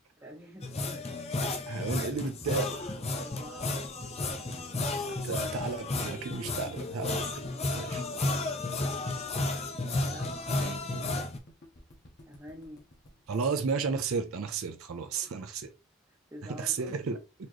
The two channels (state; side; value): normal; both; correlation 0.40